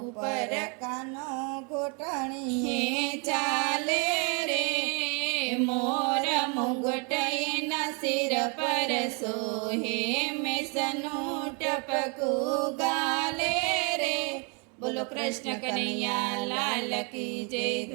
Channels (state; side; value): quieter; left; 34.8 dB